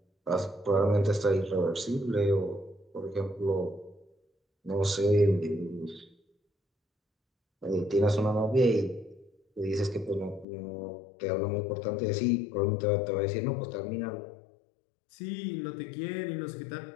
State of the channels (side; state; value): right; drops out; at 10.5 s